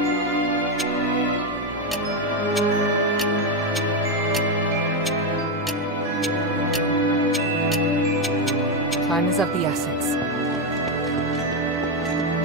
Time is of the essence.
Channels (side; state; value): both; normal; correlation 0.07